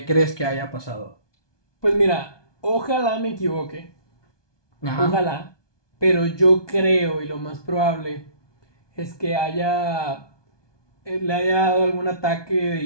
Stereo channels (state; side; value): late; right; 1.2 ms